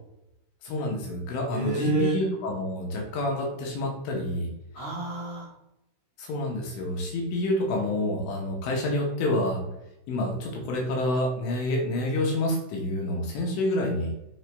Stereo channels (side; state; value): right; late; 16 ms